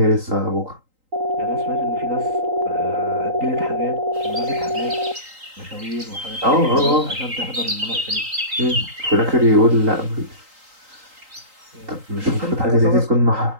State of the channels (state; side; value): late; left; 3.8 ms